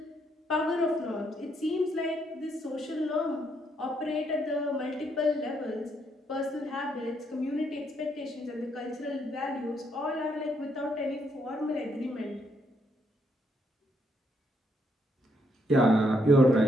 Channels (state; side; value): normal; both; correlation 0.74